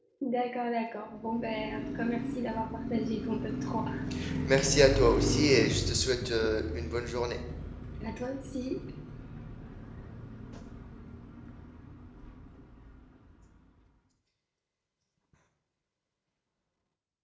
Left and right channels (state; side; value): identical; both; correlation 1.00